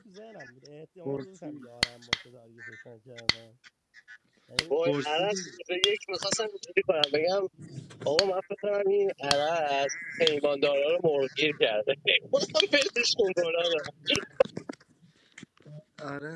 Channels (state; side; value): identical; both; correlation 1.00